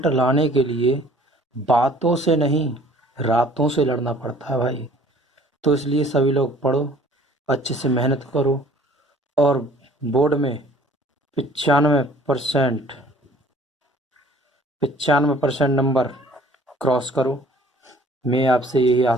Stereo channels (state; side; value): normal; both; correlation 0.53